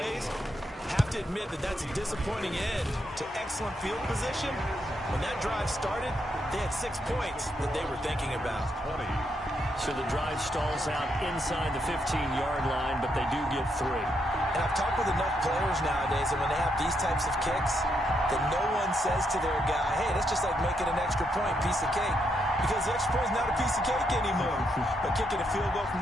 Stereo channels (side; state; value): both; normal; correlation 0.79